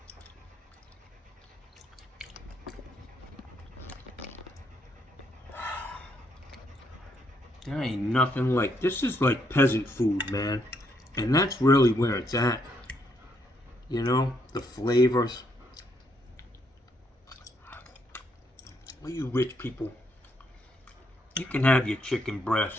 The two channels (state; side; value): normal; both; correlation 0.74